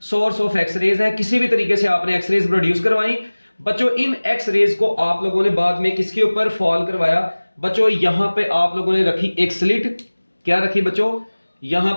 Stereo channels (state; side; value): inverted; both; correlation -1.00